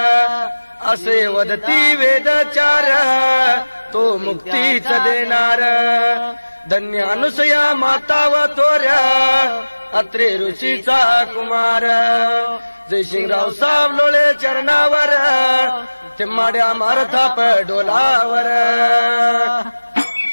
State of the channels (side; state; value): both; inverted; correlation -1.00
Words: असे वदती वेदचार तो मुक्तीच देणार धन्य अनुसया माता व थोर अत्रे ऋषीचा कुमार जयसिंगराव सावलोळे चरणावर ते माड्या मारथाप डोलावर